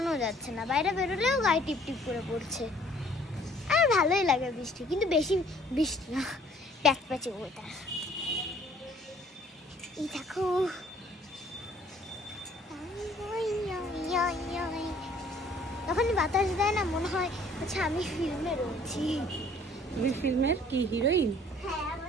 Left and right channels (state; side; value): normal; both; correlation 0.57